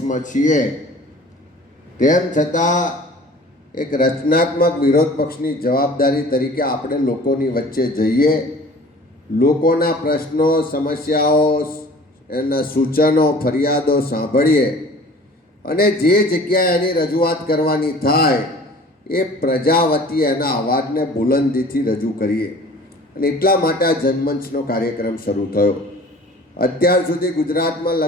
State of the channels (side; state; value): both; normal; correlation 0.46